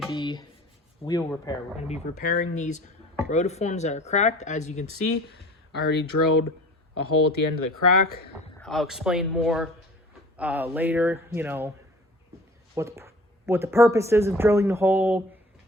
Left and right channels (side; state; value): both; normal; correlation 0.44